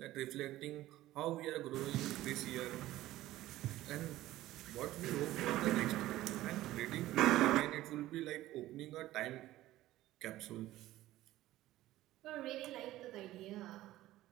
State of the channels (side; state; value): left; quieter; 15.6 dB